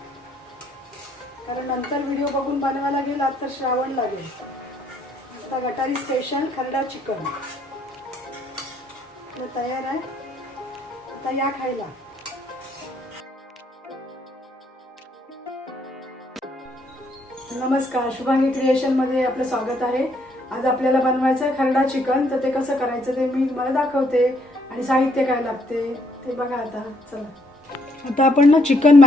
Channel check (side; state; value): both; normal; correlation 0.69